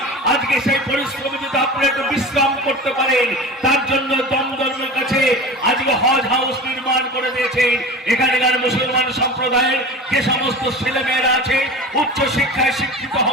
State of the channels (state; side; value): normal; both; correlation 0.33